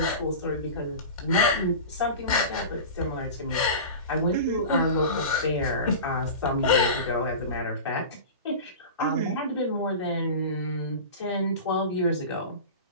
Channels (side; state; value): both; inverted; correlation -0.31